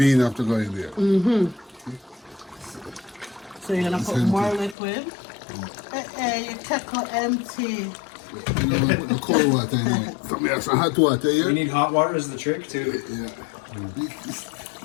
have to go in there. So you're gonna put more liquid. Your kettle empty. You know, I put the cold water in it. Some have some hot water We here. need hot water is the trick too. Yeah.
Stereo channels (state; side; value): drops out; right; at 4.8 s